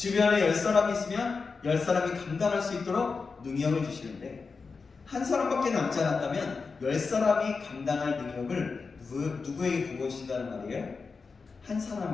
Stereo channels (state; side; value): quieter; right; 4.7 dB